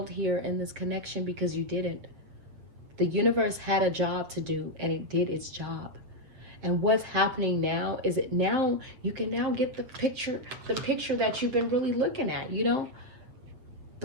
here in this connection, because you didn't. The universe had a job to do and it did its job. And what's happening now is you can now get the picture that you've been really looking at, you know,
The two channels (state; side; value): late; left; 7.9 ms